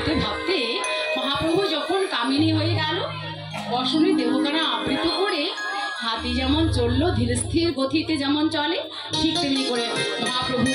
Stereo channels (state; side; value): identical; both; correlation 1.00